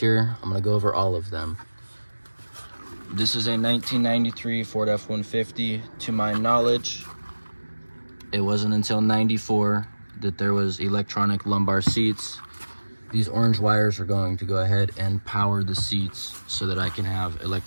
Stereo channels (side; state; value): both; inverted; correlation -1.00